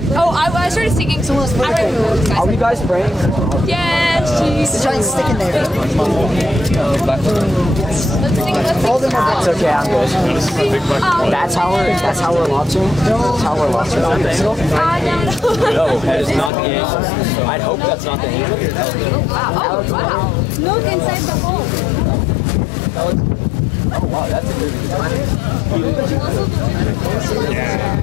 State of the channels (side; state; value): right; drops out; at 16.5 s